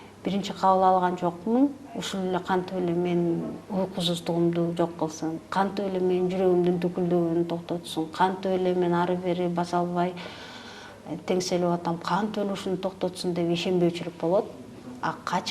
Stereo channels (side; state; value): both; identical; correlation 1.00